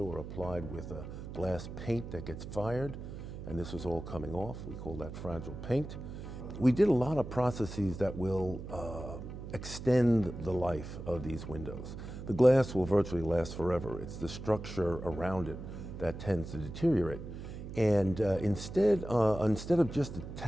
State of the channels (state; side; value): noise; right; hum, 10 dB below the sound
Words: were applied with a glass paint that gets fired, and this was all coming off. We call that fragile paint. We did a lot of processes that will extend the life of these windows. The glass will virtually last forever. It's the structure around it that tends to deteriorate. And instead of just